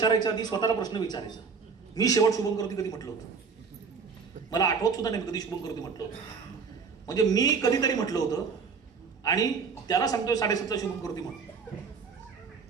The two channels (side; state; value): left; quieter; 5.5 dB